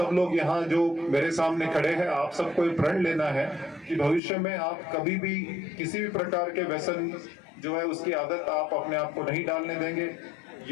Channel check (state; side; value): drops out; right; at 4.2 s